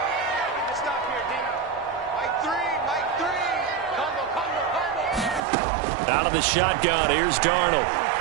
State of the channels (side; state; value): left; drops out; at 5.4 s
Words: Out of the shotgun, here's Darnold.